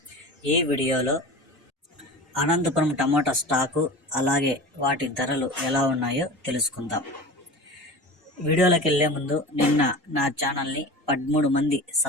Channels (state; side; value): normal; both; correlation 0.33